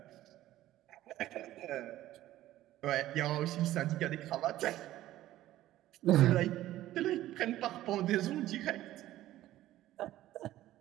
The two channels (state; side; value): quieter; left; 14.5 dB